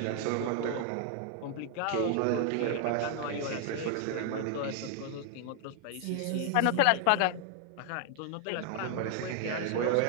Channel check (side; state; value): both; different; correlation 0.00